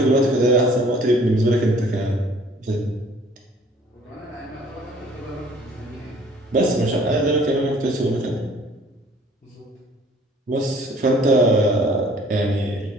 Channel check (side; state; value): both; normal; correlation 0.54